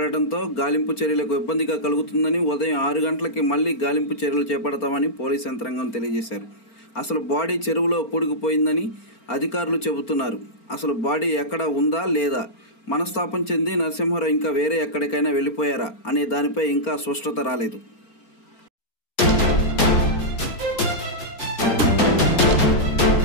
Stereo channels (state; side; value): late; right; 4.4 ms